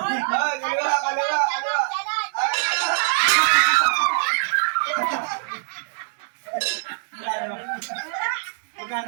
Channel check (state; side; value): silent; left; digital silence